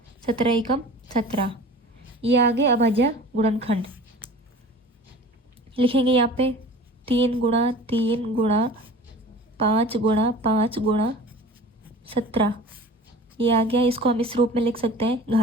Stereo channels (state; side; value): normal; both; correlation 0.41